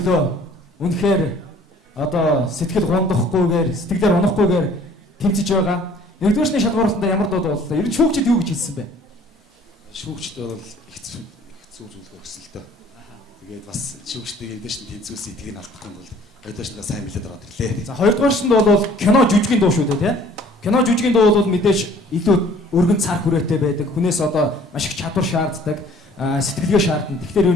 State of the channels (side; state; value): both; normal; correlation 0.54